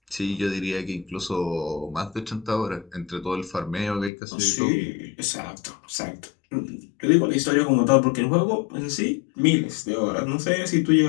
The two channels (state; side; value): drops out; right; at 4.1 s